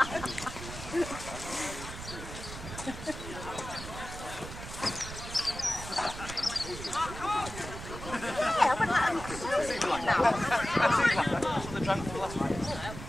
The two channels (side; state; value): right; noise; rumble, 10 dB below the sound